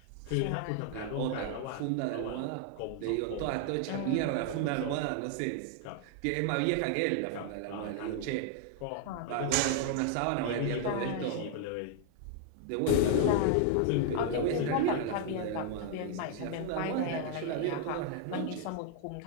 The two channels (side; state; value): both; different; correlation 0.00